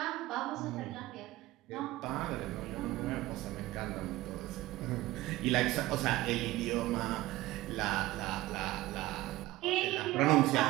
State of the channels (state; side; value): quieter; left; 17.6 dB